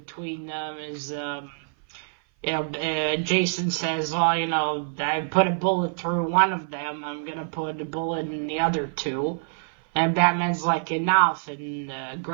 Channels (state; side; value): silent; left; 57 dB below the other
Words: them as, Jason says, well, I put a bullet through one of them. I'm going to put a bullet in the other two. And Batman's like, enough, and